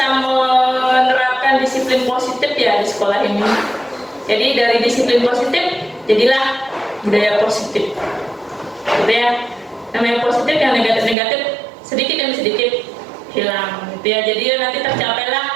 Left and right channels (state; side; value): drops out; left; at 11.2 s